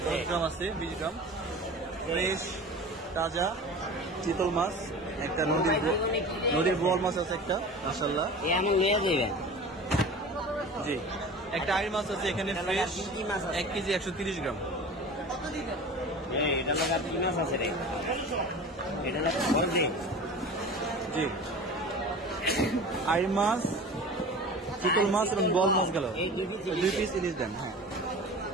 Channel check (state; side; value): normal; both; correlation 0.37